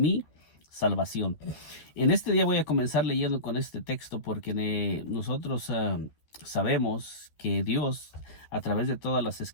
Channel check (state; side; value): late; right; 12 ms